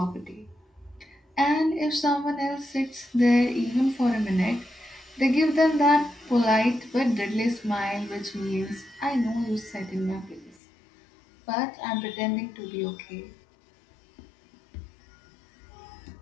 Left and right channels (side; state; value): right; drops out; at 10.6 s